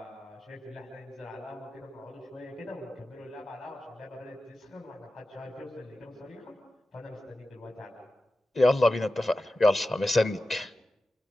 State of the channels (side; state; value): both; normal; correlation 0.93